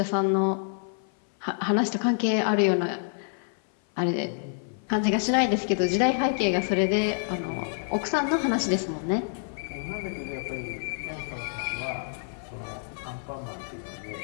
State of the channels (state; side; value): silent; right; 56 dB below the other